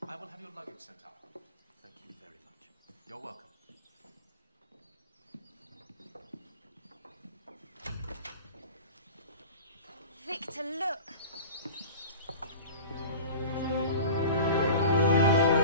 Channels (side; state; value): both; inverted; correlation -0.36